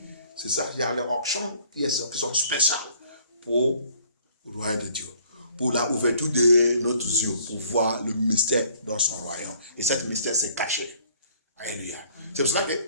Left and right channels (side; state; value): both; inverted; correlation -0.59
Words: C'est ça, il y a les auctions qui sont spéciales pour le royaume de Dieu. Pour la ouverture de notre yeux, pour voir le mystère dans son royaume. Et cet mystère s'est caché. Alléluia. C'est pour cela